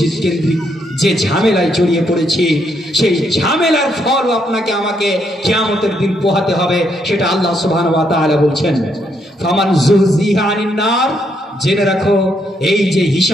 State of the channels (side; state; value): both; normal; correlation 0.75